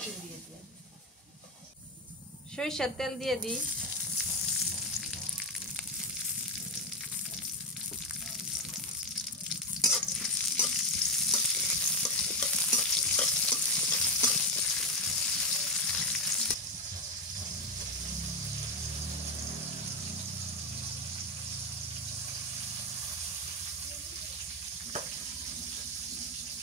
দিয়ে দিয়ে সরিষার তেল দিয়ে দিই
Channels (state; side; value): normal; both; correlation 0.09